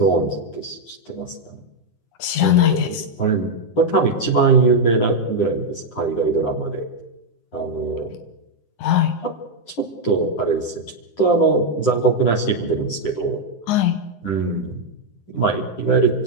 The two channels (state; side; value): late; right; 9.7 ms